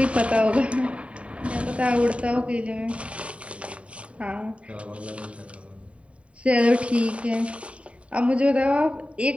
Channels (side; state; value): left; late; 0.063 ms